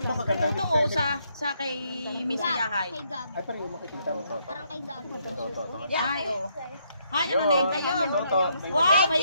Katuto o sa kay Miss Hayahay. Kay Gab. Ay, parang yung makikita mo Toto. Parang kay Gab. Kay Toto. Ay oh. Ay ano na yun ayun. Toto. Wow, Thank may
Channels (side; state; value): both; inverted; correlation -0.74